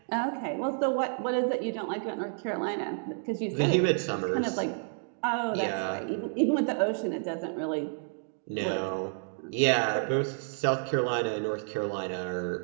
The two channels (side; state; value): left; silent; digital silence